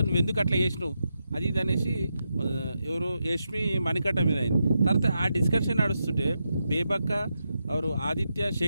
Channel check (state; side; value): inverted; both; correlation -0.86